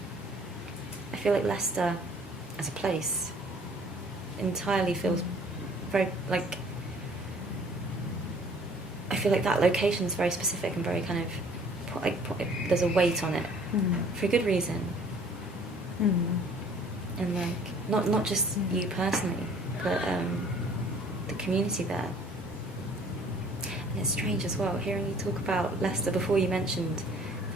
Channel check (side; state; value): both; normal; correlation 0.54